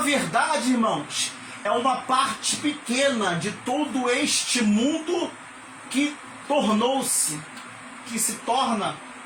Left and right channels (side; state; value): both; identical; correlation 1.00